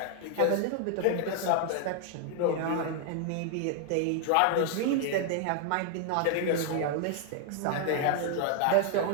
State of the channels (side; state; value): both; different; correlation 0.00